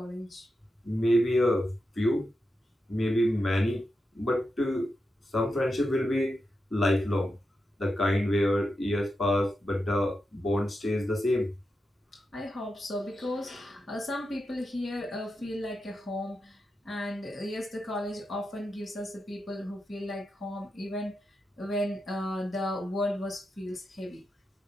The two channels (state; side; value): normal; both; correlation 0.88